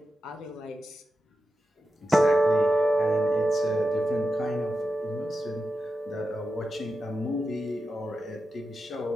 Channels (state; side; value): normal; both; correlation 0.89